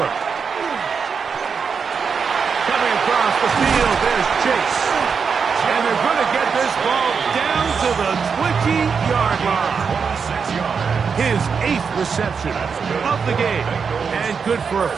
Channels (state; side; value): quieter; left; 5.9 dB